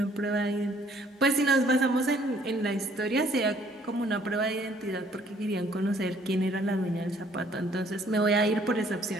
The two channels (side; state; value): both; normal; correlation 0.62